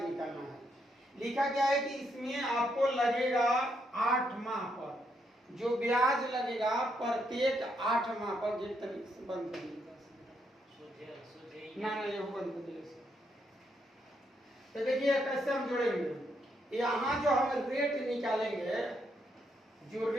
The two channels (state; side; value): normal; both; correlation 0.77